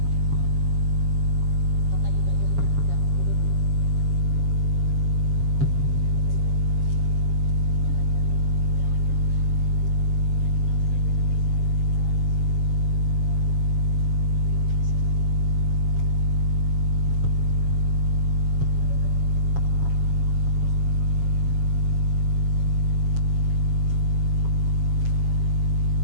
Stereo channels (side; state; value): left; late; 7.2 ms